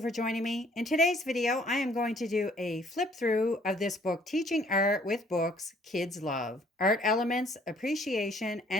for joining me. In today's video, I am going to do a flip through of this book, Teaching Art with Books Kids Love. Art Elements, Appreciation,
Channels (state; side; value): normal; both; correlation 0.60